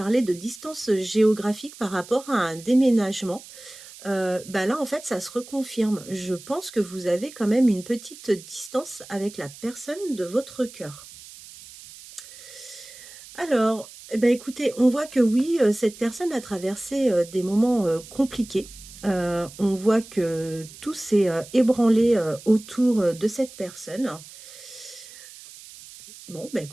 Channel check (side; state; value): right; noise; hiss, 18 dB below the sound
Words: de distance géographique par rapport à un déménagement. Bah là, en fait, ça se reconfirme. Je pense que vous avez quand même une petite distance avec la personne de votre cœur. Alors, eh ben, écoutez, on voit que oui, cette personne a traversé des moments compliqués. On voit que tout s'est ébranlé autour de cette personne. Bon, bah